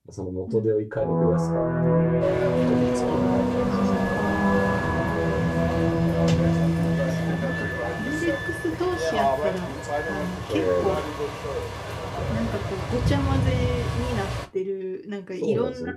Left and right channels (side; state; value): both; identical; correlation 1.00